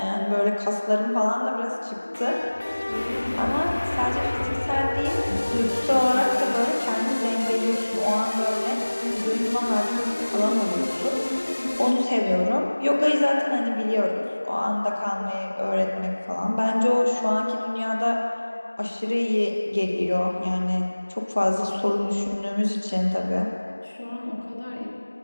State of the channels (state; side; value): inverted; both; correlation -1.00